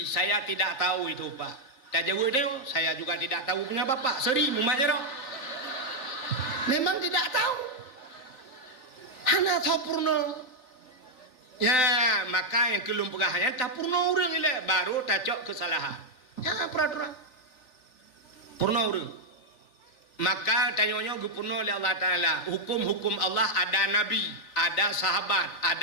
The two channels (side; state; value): right; late; 3.9 ms